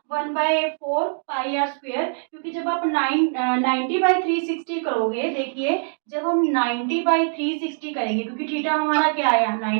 1/4 पाई आर स्क्वायर, क्योंकि जब आप 90/360 करोगे, देखिए जब हम 90/360 करेंगे क्योंकि थीटा हमारा क्या आया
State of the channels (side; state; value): left; silent; digital silence